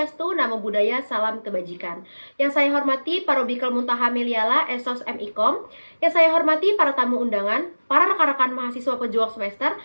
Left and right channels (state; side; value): inverted; both; correlation -1.00